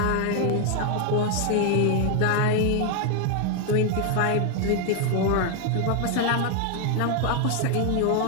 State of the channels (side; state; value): both; different; correlation 0.00